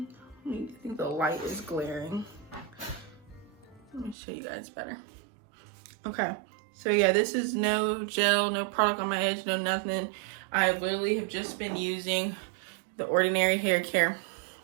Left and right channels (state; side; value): drops out; left; at 4.2 s